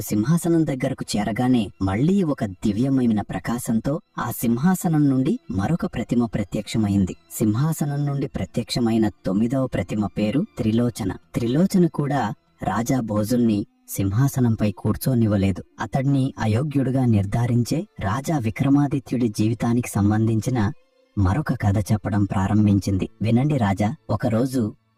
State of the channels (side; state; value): both; identical; correlation 1.00